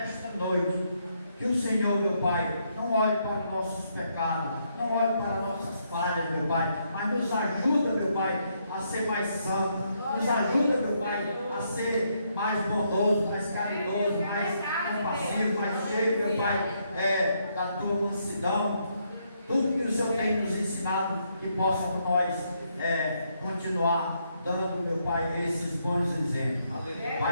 noite, que o Senhor, meu Pai, não olhe para os nossos pecados, não olhe para as nossas falhas, meu Pai, mas nos ajuda, meu Pai, a ser mais santo, nos ajuda, meu Pai, a ser mais bondoso, mais caridoso, mais compassivo, mais cheio, meu Pai, da Tua mansidão, tudo que o Senhor tem nos ensinado, que possa por nós continuar dando, meu Pai, esses bons exemplos.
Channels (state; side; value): inverted; both; correlation -0.75